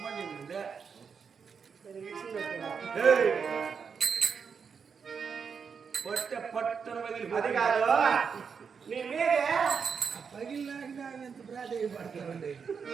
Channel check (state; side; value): quieter; left; 6.1 dB